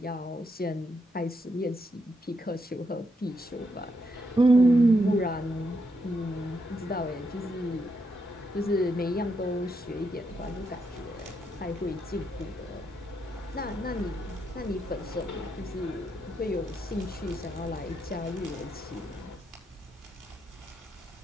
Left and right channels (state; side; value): normal; both; correlation 0.80